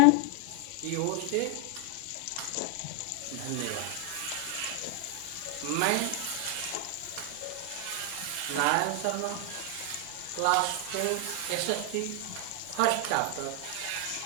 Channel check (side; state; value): both; different; correlation 0.00